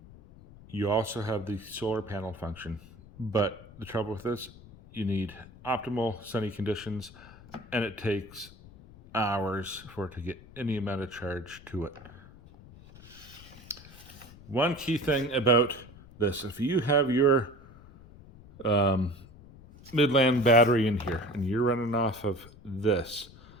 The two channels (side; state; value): left; noise; rumble, 20 dB below the sound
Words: You also have the solar panel function, but the trouble with this, you need optimal sunny conditions, and it takes hours for it to get any amount of charge to it. One key thing about this, if you have your Midland battery in here and you're running off of this,